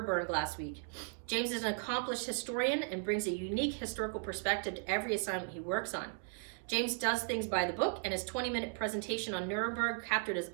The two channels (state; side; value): silent; left; 54 dB below the other